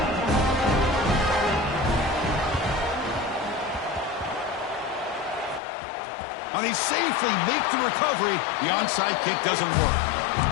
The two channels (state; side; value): drops out; right; at 5.6 s